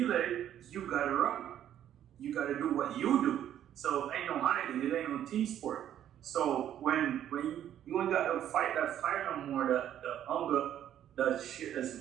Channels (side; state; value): left; quieter; 10.8 dB